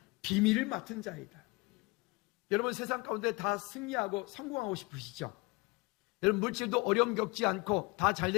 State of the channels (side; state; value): right; quieter; 25.5 dB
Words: 비밀을 맡은 자이다. 여러분 세상 가운데 다 승리하고 성공하고 싶으시죠? 여러분 물질도 어려움 겪지 않고 다